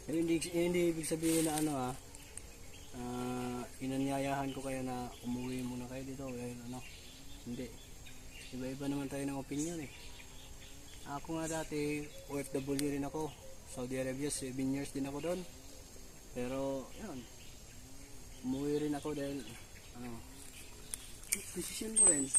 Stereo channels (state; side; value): identical; both; correlation 1.00